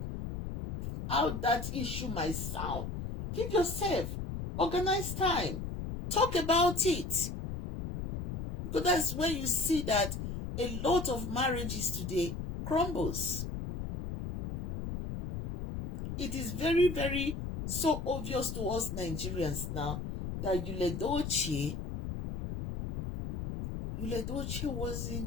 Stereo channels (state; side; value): noise; left; rumble, 5 dB below the sound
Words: that issue might sound. Give yourself, organize time, talk about it. Because that's when you see that a lot of marriages today crumbles. It is very, very so obvious to us Nigerians now that Yul Edochie